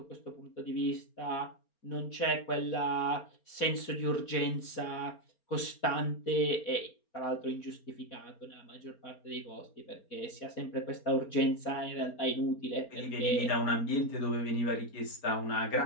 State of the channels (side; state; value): right; late; 4.4 ms